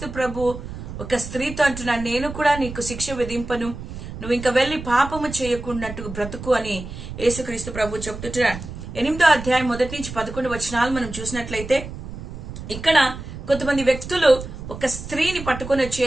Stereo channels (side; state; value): right; noise; rumble, 10 dB below the sound